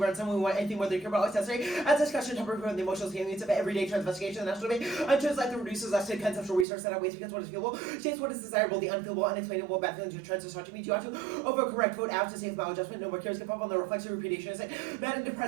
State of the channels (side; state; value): left; drops out; at 6.7 s